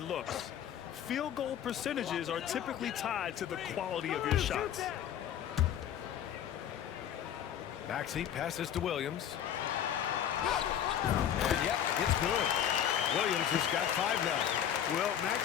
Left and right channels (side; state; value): right; quieter; 9.8 dB